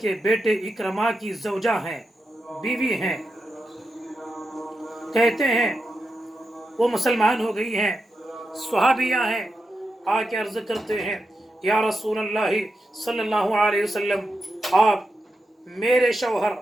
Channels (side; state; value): both; normal; correlation 0.88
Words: बेटे इकरमा की ज़ौजा हैं, बीवी हैं, कहते हैं वो मुसलमान हो गई हैं, स्वहाबिया हैं, आके अर्ज करते हैं या रसूल अल्लाह सल्लल्लाहु अलैहि वसल्लम, आप मेरे शौहर